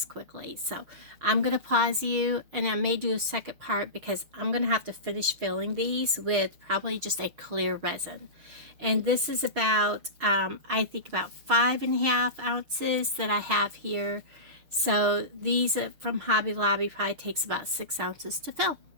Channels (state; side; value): late; left; 6.4 ms